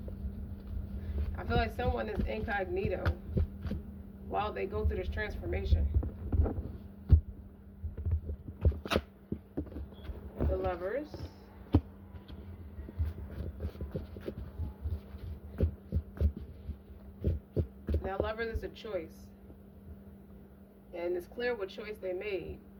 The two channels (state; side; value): identical; both; correlation 1.00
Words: I feel like someone is incognito while they go through this transformation. The Lovers. Now, Lovers is a choice. And it's clear what choice they made